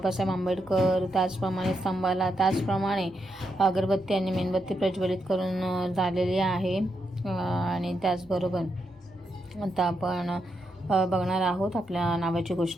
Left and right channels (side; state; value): both; normal; correlation 0.82